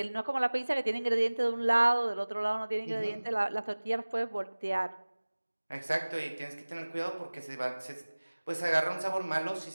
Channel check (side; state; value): both; inverted; correlation -1.00